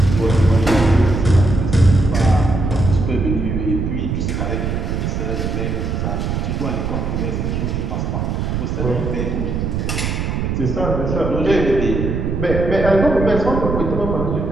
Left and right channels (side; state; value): right; noise; rumble, 1 dB below the sound